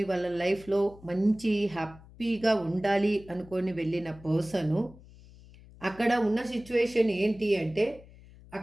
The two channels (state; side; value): noise; left; hum, 22 dB below the sound